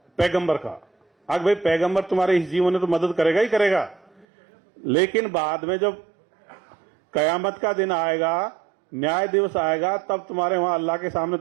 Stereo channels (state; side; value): drops out; left; at 4.2 s